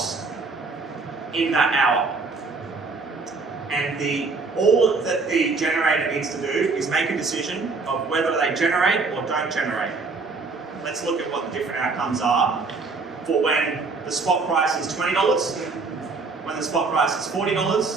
in that hour. And all that the generator needs to do is make a decision of whether they generate or don't generate. Let's look at what the different outcomes are for when the spot price is $20, when the spot price is $40,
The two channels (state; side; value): quieter; left; 4.1 dB